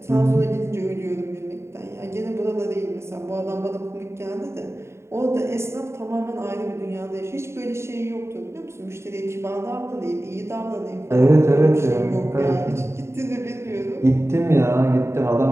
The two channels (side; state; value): left; late; 0.13 ms